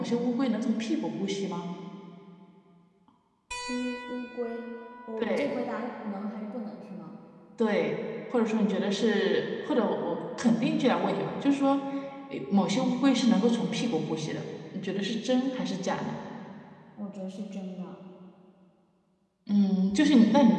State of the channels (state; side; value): identical; both; correlation 1.00